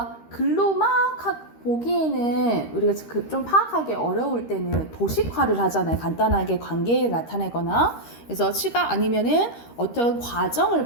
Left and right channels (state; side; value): late; right; 13 ms